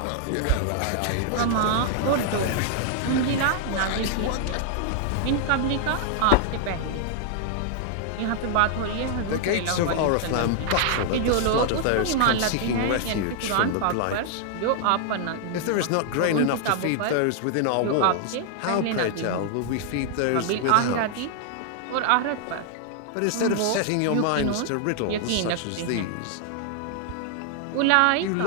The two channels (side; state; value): both; different; correlation 0.00